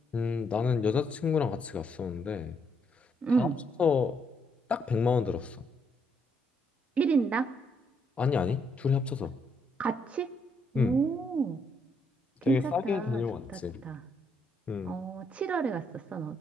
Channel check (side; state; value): both; normal; correlation 0.74